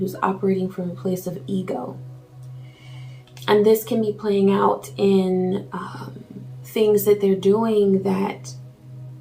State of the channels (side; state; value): both; identical; correlation 1.00